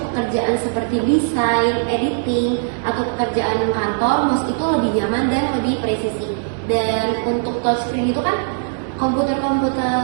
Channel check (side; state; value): left; silent; digital silence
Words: pekerjaan seperti desain, editing, atau pekerjaan kantor, mouse itu lebih nyaman dan lebih presisi. Dan untuk touchscreen itu kan